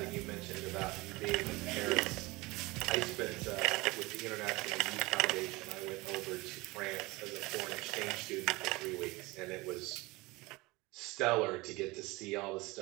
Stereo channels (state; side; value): quieter; left; 22.4 dB